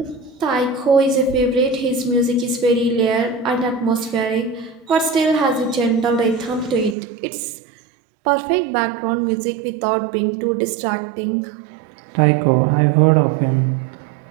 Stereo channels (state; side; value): drops out; left; at 7.0 s